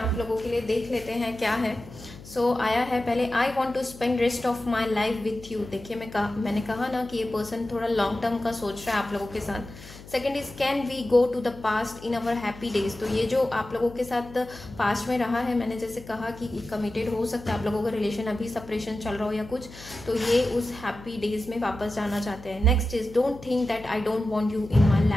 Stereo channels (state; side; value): noise; left; hum, 18 dB below the sound